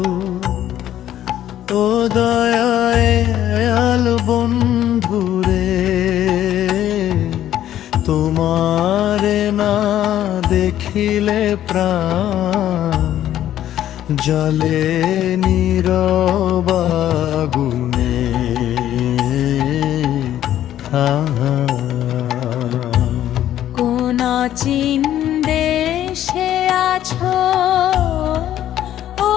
ও দয়াল বন্ধুরে, তোমারে না দেখিলে প্রাণ জলে নীরব আগুনে। কোন অচিন দেশে আছো ও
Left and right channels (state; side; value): quieter; right; 11.9 dB